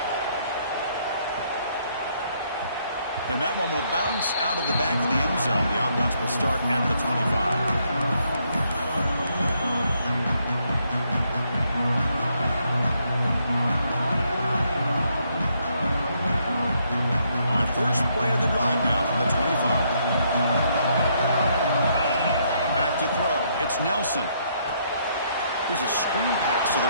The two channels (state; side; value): inverted; both; correlation -0.73